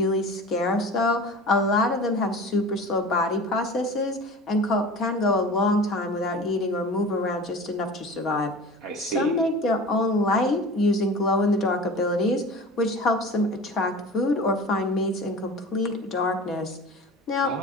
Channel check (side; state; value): both; normal; correlation 0.37